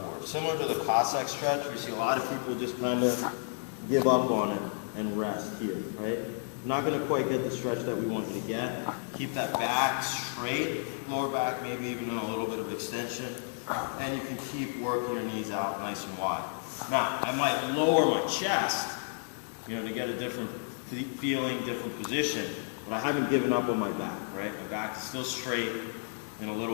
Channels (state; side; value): silent; right; 57 dB below the other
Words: Similar to the Cossack stretch, we see a lot of people just kind of give up on it and rest here. Right? Not going to quite get the stretch that we want you to get. Keep that back straight, lower back maybe even a little bit of extension, and you can keep working your knees out nice and wide. Now, I might lower my chest, to get a different feeling, different position, but I haven't given up on my back, right? My back is still straight and a